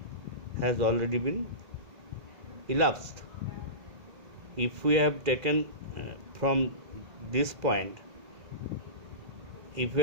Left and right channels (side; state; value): left; late; 2.4 ms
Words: has already been elapsed. If we have taken from this point, if we